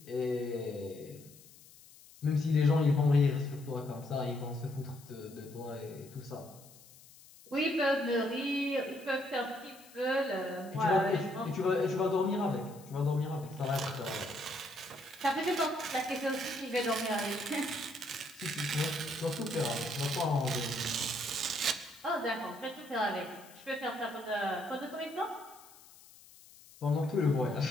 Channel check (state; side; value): noise; left; hiss, 22 dB below the sound